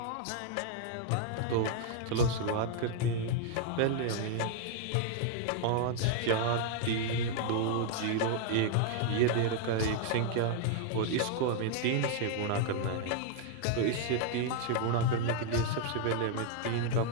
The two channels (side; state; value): both; different; correlation 0.00